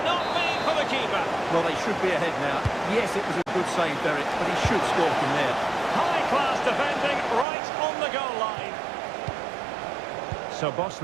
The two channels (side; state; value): left; drops out; at 7.5 s